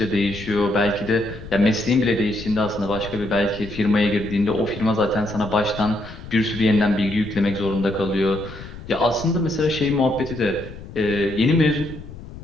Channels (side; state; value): left; noise; rumble, 14 dB below the sound